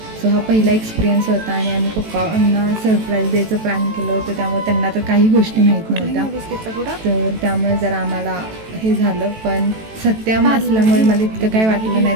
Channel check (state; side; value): late; left; 18 ms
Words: सो हा पहिला एक्सपिरियन्स होता आणि आम्ही पप्पांना सरप्राईज द्यायचं प्लॅन केलं होतं, त्यामुळे त्यांना तर काही गोष्टी माहीत नव्हत्या. तर त्यामुळे जरा आम्हाला हे झालं. पण सत्यम असल्यामुळे मला इतकं काही वाटलं नाही,